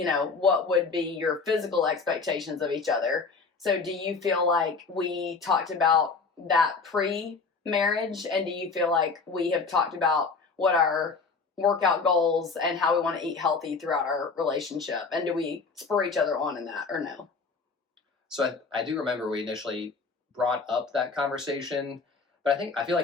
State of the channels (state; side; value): quieter; right; 4.6 dB